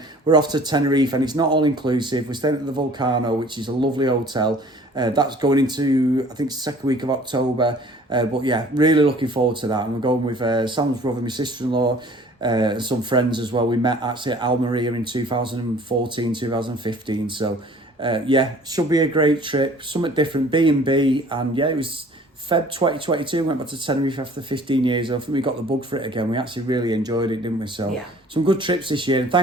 we're off to Tenerife and it's not all inclusive. We're staying at the Volcano, which is a lovely hotel. That's going into, I think, second week of October. But yeah, really looking forward to that. And we're going with Sam's brother, my sister-in-law, and some friends as well. We met actually at Almeria in 2014, 2015. So yeah, should be a great trip. Something different, B&B. And yeah, it was Feb 2022. Went back to Tenerife after 15 years. I think we got the bug for it again. We actually really enjoyed it, didn't we? So yeah, some good trips this year. And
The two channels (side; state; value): both; normal; correlation 0.51